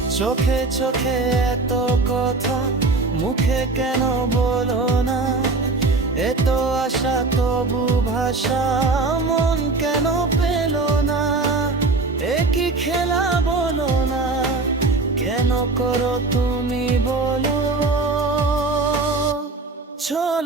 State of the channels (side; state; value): left; quieter; 3.6 dB